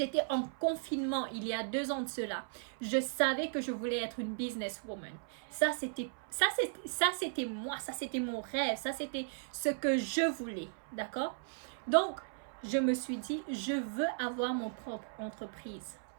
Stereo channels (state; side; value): silent; left; 54 dB below the other